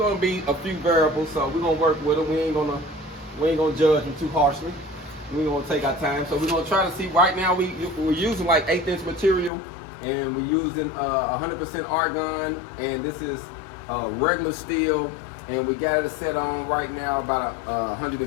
be a few variables. So we're gonna work with him. We ain't gonna judge him too harshly. We're gonna take our time. So we're gonna try to see. Right now we're using like 1/8 inch material, and we're using 100% argon, and this is regular steel, and we got it set on right now about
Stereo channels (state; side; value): drops out; right; at 9.5 s